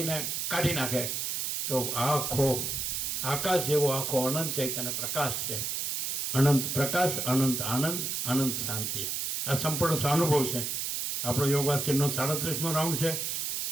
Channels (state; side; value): noise; right; hiss, 1 dB below the sound